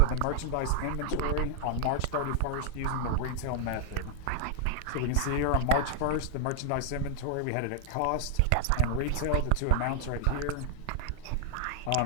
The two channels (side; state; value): both; different; correlation 0.00